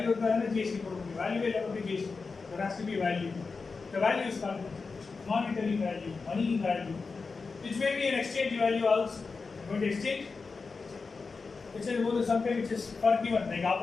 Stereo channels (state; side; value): quieter; right; 4.5 dB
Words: இருந்தா GST போட முடியும் value இல்ல அப்படி GST there has to be value the value is called monetary value money value which may be an exchange value also going to exchange which is also something which is forgiven like